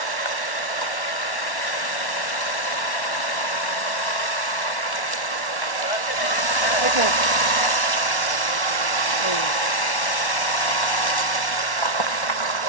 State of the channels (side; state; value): right; late; 1.1 ms